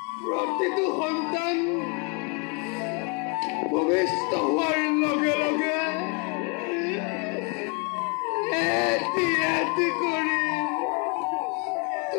প্ৰতিটো সন্তান ভূমিষ্ঠ হোৱাৰ লগে লগে এটি এটি কৰি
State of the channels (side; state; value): right; quieter; 32.6 dB